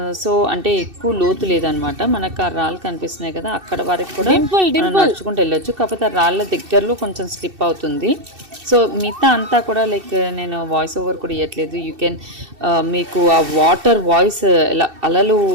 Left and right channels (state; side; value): late; left; 2.7 ms